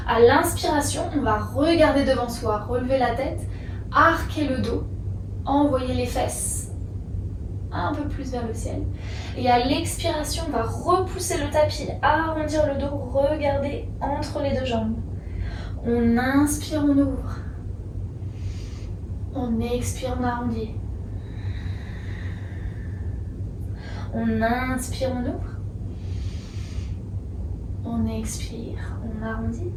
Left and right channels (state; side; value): identical; both; correlation 1.00